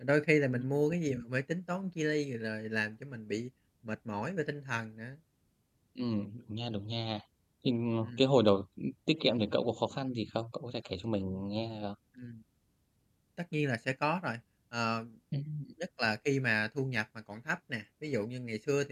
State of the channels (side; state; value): both; identical; correlation 1.00